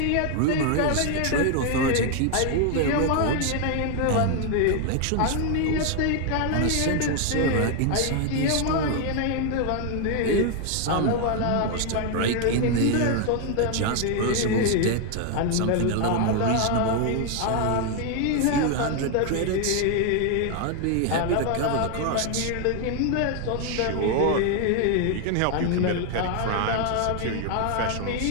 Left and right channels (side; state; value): both; different; correlation 0.00